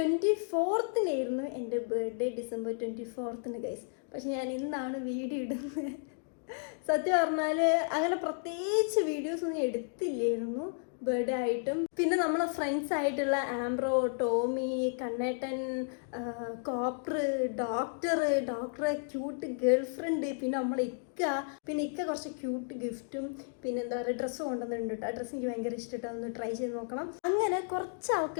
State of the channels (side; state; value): right; silent; 56 dB below the other